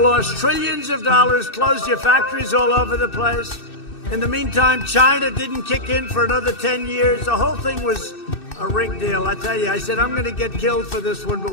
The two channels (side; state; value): right; late; 2.6 ms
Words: lost trillions of dollars, closed your factories all over the place. In the meantime, China didn't kick in for another 10 years. The whole thing was a rigged deal. I tell you, I said, I'm going to get killed for this one,